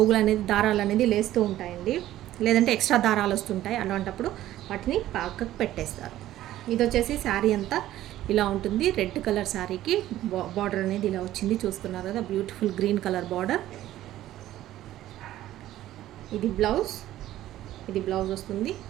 అనేది దారాలు అనేది లేస్తూ ఉంటాయండి, లేదంటే ఎక్స్ట్రా దారాలు వస్తుంటాయి. అలాంటప్పుడు వాటిని పక్కకు పెట్టేస్తారు. ఇది వచ్చేసి శారీ అంతా ఇలా ఉంటుంది. రెడ్ కలర్ శారీకి బార్డర్ అనేది ఇలా వచ్చింది, చూస్తున్నారు కదా, బ్యూటిఫుల్ గ్రీన్ కలర్ బార్డర్. ఇది బ్లౌజ్ వస్తుంది.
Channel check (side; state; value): left; quieter; 13.9 dB